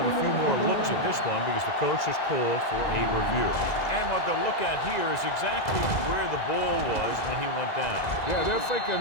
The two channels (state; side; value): late; right; 2.0 ms